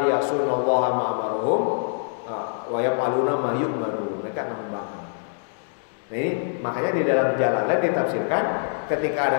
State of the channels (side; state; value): right; silent; digital silence